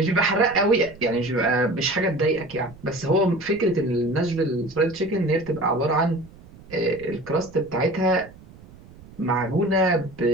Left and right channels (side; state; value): right; noise; rumble, 21 dB below the sound